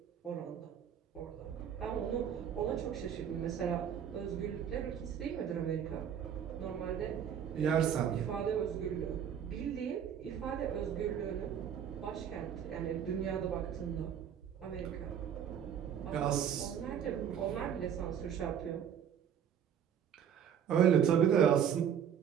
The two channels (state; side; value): quieter; left; 8.7 dB